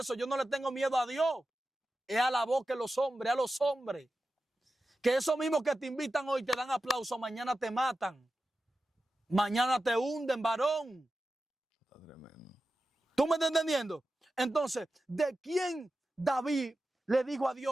Yo no le tengo miedo a Dios. Es a la voz que los hombres, a los hombres. Que esos mismos que te invitan hoy te dan aplauso, mañana te matan. Mañana te hunden, varón. Está tremendo. ¿Tú me estás entendiendo? Entonces, ¿de quién David le dijo a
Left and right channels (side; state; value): both; normal; correlation 0.92